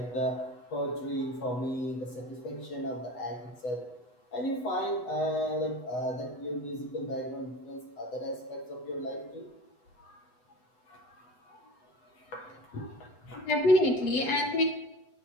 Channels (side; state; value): right; late; 8.1 ms